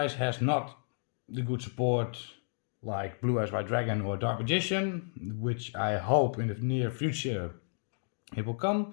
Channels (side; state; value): right; silent; digital silence